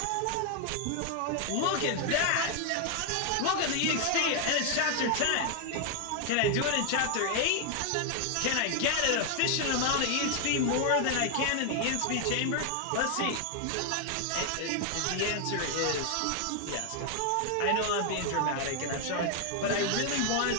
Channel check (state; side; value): different; both; correlation 0.00